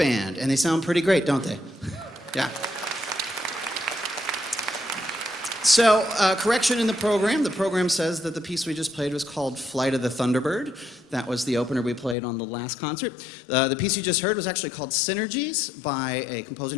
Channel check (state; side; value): drops out; right; at 12.2 s